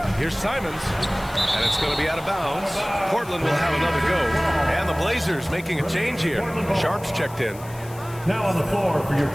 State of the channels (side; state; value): left; noise; hiss, 20 dB below the sound